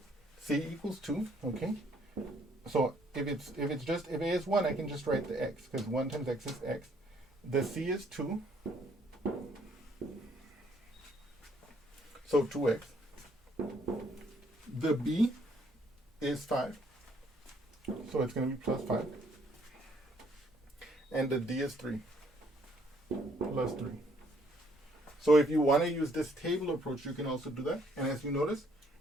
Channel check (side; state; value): both; normal; correlation 0.66